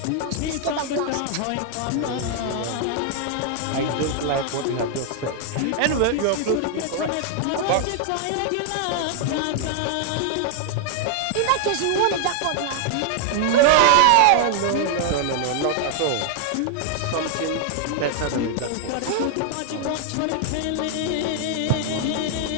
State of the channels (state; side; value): different; both; correlation 0.00